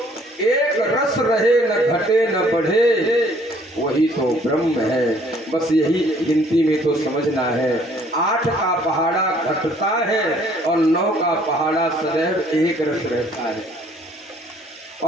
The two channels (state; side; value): normal; both; correlation 0.60